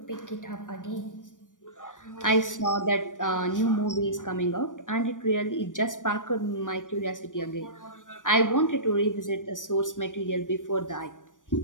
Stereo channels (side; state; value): right; late; 0.88 ms